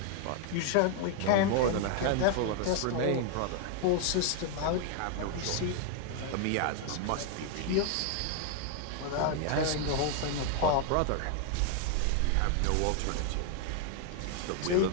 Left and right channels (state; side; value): different; both; correlation 0.00